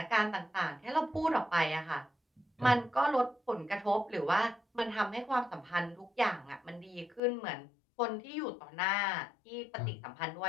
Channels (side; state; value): right; drops out; at 7.2 s